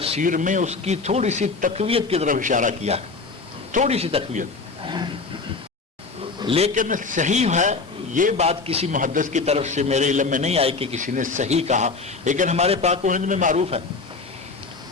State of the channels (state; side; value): quieter; right; 4.2 dB